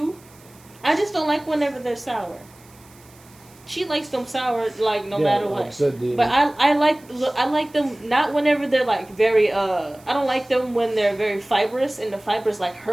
I just don't like whenever they're sour. She likes them sour like no matter like what. I said, But I like them not whenever they're like very I don't like them when they're very fibrous and the fibers like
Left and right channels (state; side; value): noise; right; hiss, 27 dB below the sound